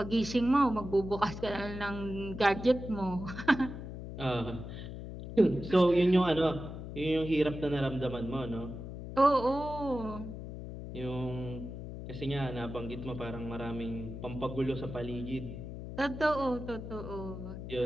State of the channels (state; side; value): noise; left; hum, 9 dB below the sound